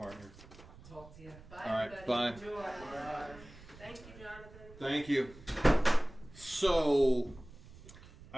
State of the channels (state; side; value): noise; right; rumble, 19 dB below the sound